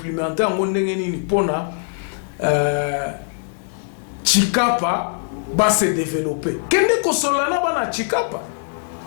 en ondengeni pona Chikapa va se développer. Kende ko solana bana Chikapa.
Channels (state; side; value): silent; right; digital silence